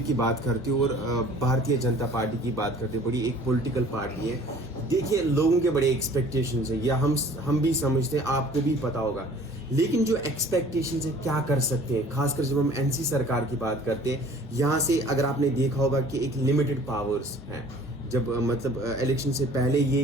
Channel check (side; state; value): both; normal; correlation 0.50